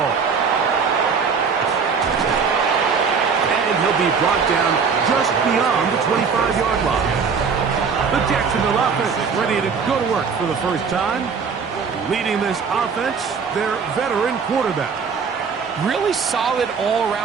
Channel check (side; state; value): left; quieter; 5.8 dB